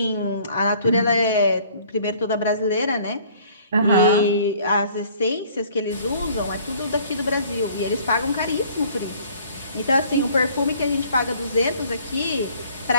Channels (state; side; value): inverted; both; correlation -0.55